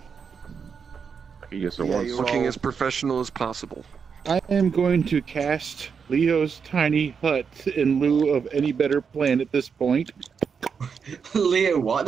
Yes, it Yeah, was. you're Looking all- as professional as possible. I am going to cast Leo's tiny hut in lieu of any better plan at this point. Leo, what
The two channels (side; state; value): left; quieter; 6.2 dB